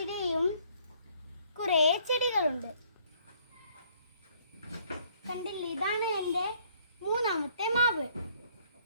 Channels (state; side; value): inverted; both; correlation -0.63